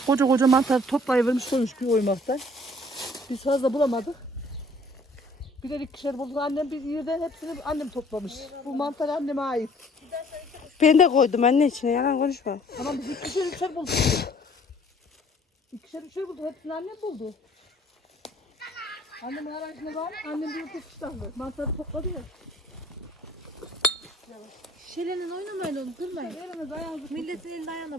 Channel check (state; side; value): normal; both; correlation 0.57